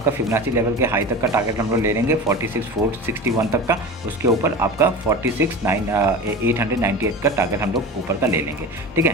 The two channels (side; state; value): both; normal; correlation 0.31